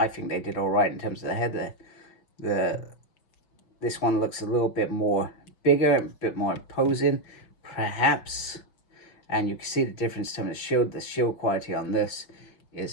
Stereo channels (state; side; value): late; right; 5.9 ms